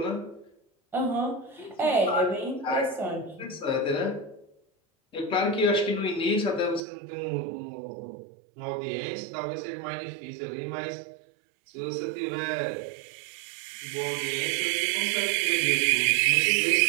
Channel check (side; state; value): left; drops out; at 6.8 s